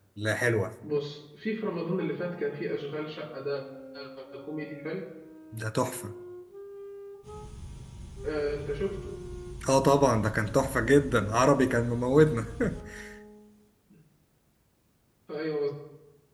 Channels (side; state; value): both; identical; correlation 1.00